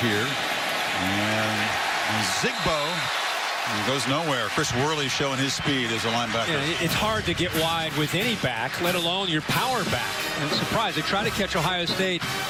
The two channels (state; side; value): identical; both; correlation 1.00